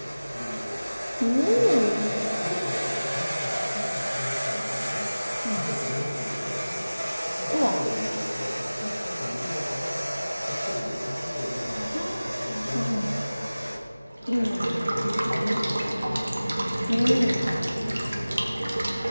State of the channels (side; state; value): both; inverted; correlation -0.98